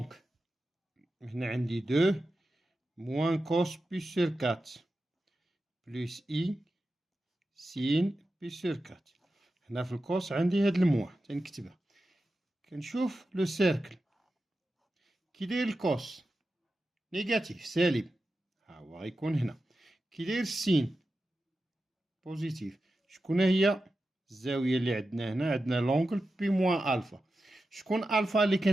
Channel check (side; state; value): both; normal; correlation 0.91